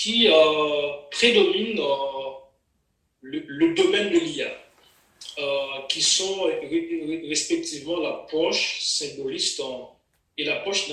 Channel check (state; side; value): identical; both; correlation 1.00